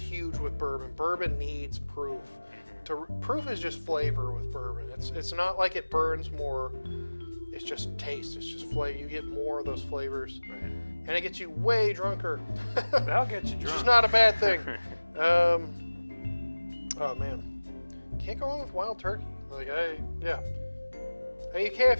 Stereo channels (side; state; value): both; inverted; correlation -1.00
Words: with bourbon. Bourbon needs proof. Proof is just flavor with bourbon. It's not like it burns more. It's just taste. It's just flavor. You get more of those flavors, and it gets you way drunker. That'll get you drunk. Which is not a bad thing. Oh man, can't go wrong with Wild Turkey. Like, I mean, you can